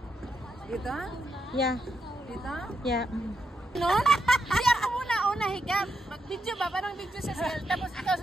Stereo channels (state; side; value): normal; both; correlation 0.83